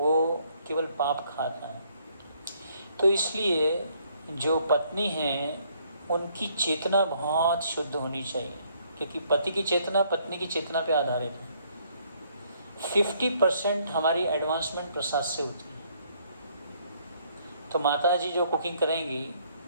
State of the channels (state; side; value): inverted; both; correlation -0.67